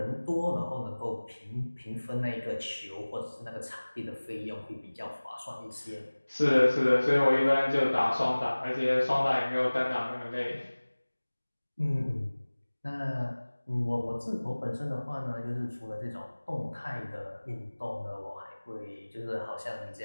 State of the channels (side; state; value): both; inverted; correlation -1.00